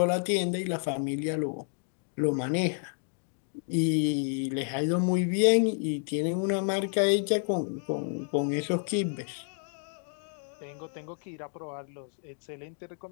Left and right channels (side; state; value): right; silent; 58 dB below the other